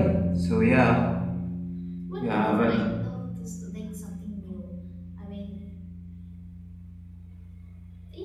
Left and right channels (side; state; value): both; identical; correlation 1.00